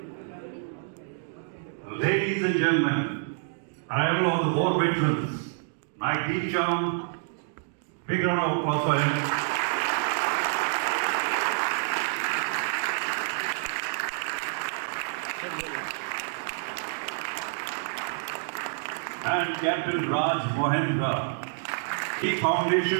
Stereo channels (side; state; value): left; silent; digital silence